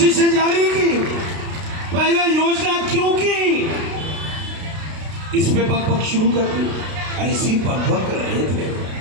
जारी की, पहले योजना क्यों की, इस पे बकबक शुरू कर दी। ऐसी बकबक कर रहे थे।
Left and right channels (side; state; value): left; late; 32 ms